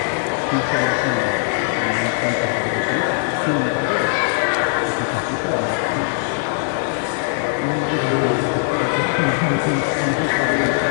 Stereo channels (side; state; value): right; silent; 66 dB below the other